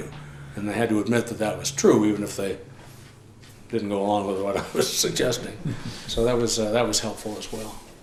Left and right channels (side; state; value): both; identical; correlation 1.00